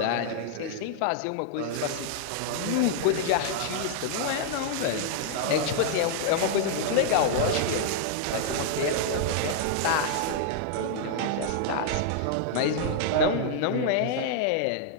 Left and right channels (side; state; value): both; different; correlation -0.01